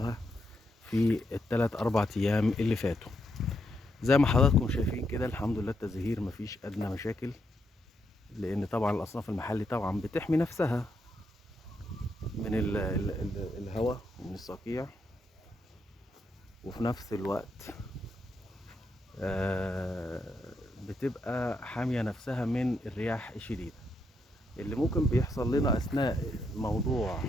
في ال3-4 أيام اللي فاتوا. زي ما حضراتكم شايفين كده، الحمد لله التزهير مفيش أدنى مشاكل، لأن طبعا الأصناف المحلي طبعا بتحمي نفسها من الهواء ومن الصقيع، وفي نفس الوقت بتبقى حامية نفسها من الرياح الشديدة اللي ممكن بيحصل لنا أثناء موضوع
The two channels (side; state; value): both; normal; correlation 0.80